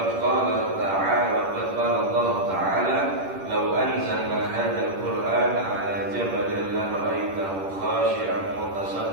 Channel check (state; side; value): late; left; 10 ms